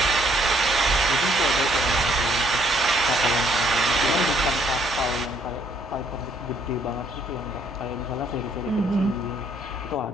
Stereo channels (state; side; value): normal; both; correlation 0.66